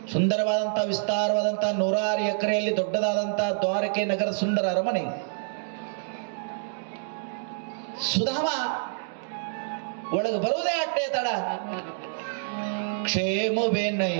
ಸುಂದರವಾದಂತ ವಿಸ್ತಾರವಾದಂತ 106 ಎಕರೆಯಲ್ಲಿ ದೊಡ್ಡದಾದಂತ ದ್ವಾರಕೆ ನಗರ ಸುಂದರ ಅರಮನೆ. ಸುಧಾಮ ಒಳಗೆ ಬರುವುದೇ ಅಟ್ಟೆ ತಡ.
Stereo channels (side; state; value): left; silent; digital silence